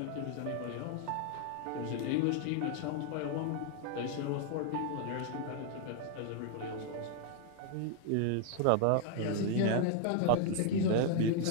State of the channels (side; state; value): both; different; correlation 0.00